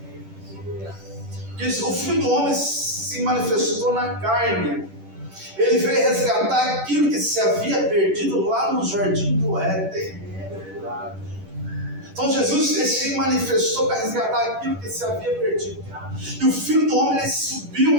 Porque o Filho do Homem se manifestou na carne. Ele veio resgatar aquilo que se havia perdido lá no jardim do Éden. Então Jesus se manifestou para resgatar aquilo que se havia perdido. E o Filho do Homem, ele subiu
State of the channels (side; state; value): left; late; 10 ms